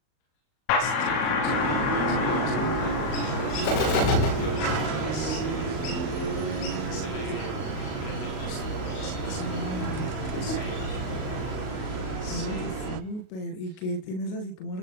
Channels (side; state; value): right; late; 38 ms